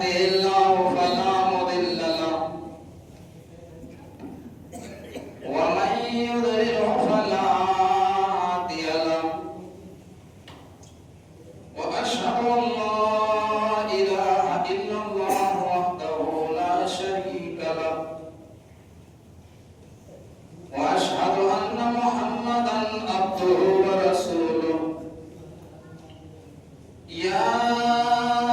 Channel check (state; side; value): identical; both; correlation 1.00